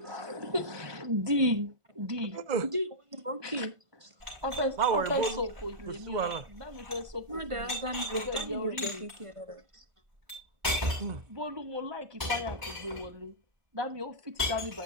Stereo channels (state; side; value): late; left; 1.5 ms